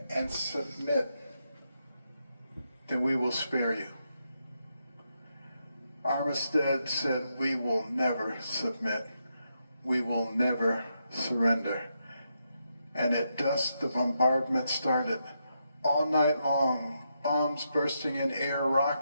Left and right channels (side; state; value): both; inverted; correlation -0.82